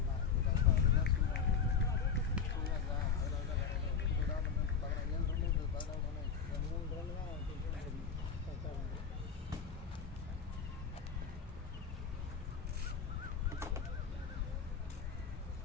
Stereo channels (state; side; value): quieter; right; 6.3 dB